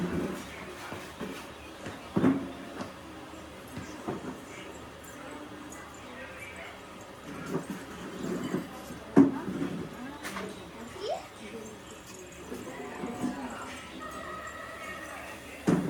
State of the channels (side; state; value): both; identical; correlation 1.00